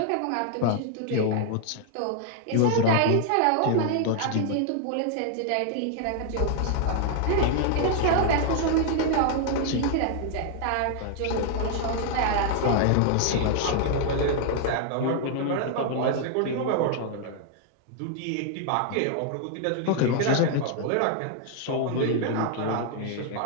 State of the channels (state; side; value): different; both; correlation 0.00